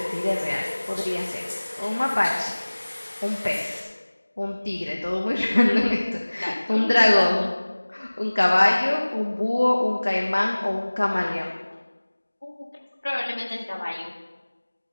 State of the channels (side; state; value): both; inverted; correlation -1.00